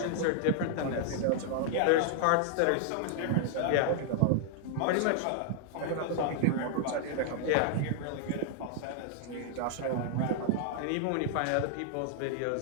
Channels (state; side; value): different; both; correlation -0.01